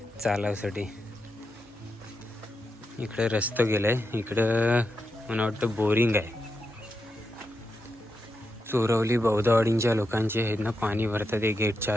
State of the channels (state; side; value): normal; both; correlation 0.86